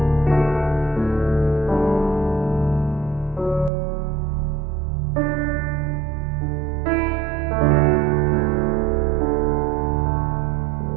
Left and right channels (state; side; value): drops out; left; at 3.7 s